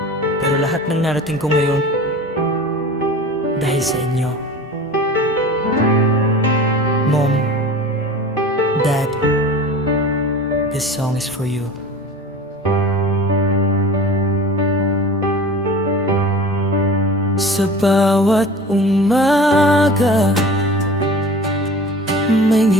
pero lahat ng narating ko ngayon dahil sa inyo. Mom, Dad, this song is for you. Sa bawat umaga, may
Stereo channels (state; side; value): normal; both; correlation 0.38